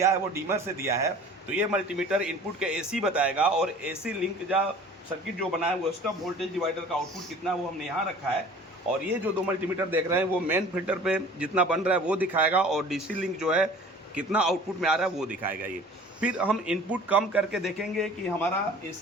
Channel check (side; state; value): both; normal; correlation 0.46